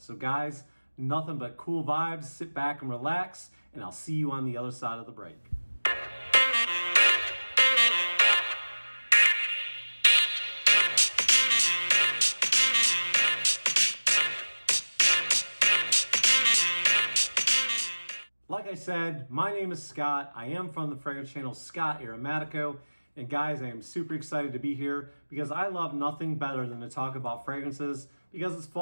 guys, nothing but cool vibes. Sit back and relax, and I'll see you on the other side of the break. Like I said, my name is Scott. I am from the fragrance channel Scott Aromatico. And guys, I am super excited to be here because I love nothing better than to talk about fragrances because it's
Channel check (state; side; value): inverted; both; correlation -1.00